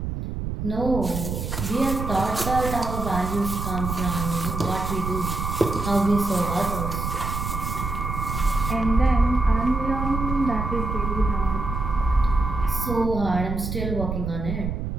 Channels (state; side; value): noise; right; rumble, 4 dB below the sound